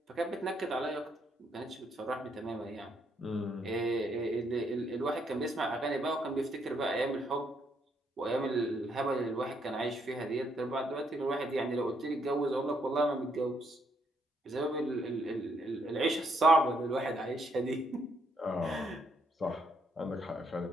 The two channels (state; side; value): normal; both; correlation 0.74